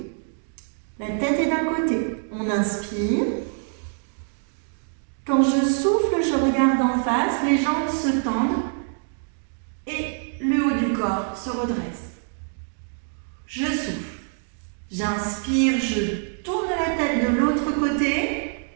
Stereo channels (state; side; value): silent; left; 62 dB below the other